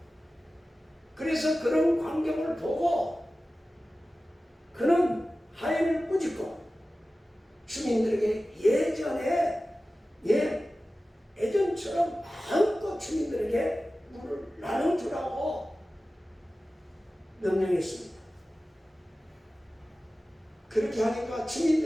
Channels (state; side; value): normal; both; correlation 0.95